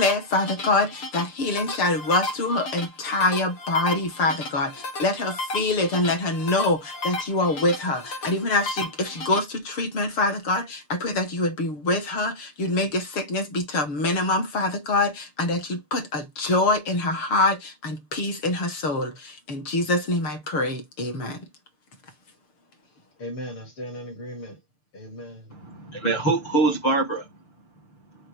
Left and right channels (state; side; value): late; right; 6.7 ms